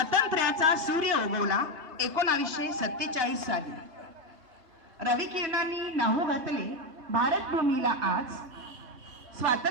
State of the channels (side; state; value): left; late; 3.2 ms